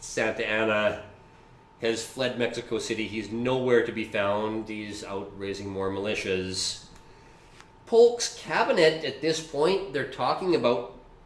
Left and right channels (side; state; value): both; identical; correlation 1.00